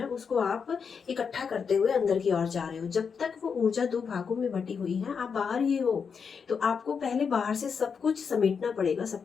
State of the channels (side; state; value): right; quieter; 6.1 dB